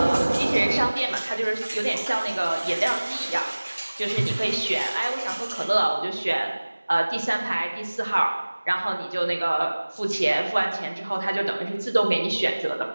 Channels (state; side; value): inverted; both; correlation -1.00